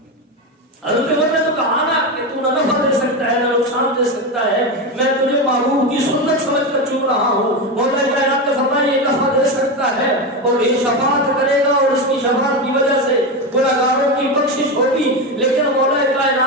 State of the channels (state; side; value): normal; both; correlation 0.16